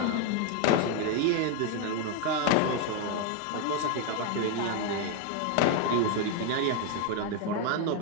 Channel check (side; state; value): both; different; correlation 0.01